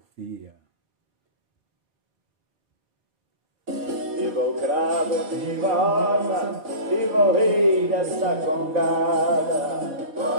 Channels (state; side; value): late; left; 4.5 ms